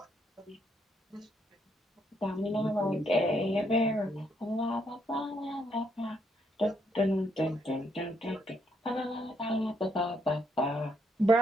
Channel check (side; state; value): both; normal; correlation 0.74